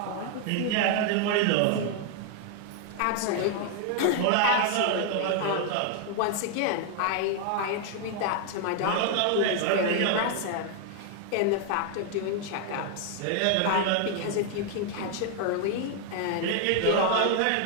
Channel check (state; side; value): different; both; correlation 0.00